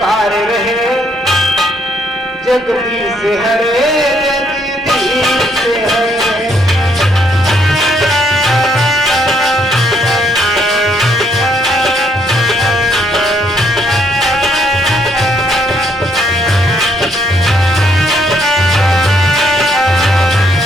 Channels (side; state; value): both; normal; correlation 0.70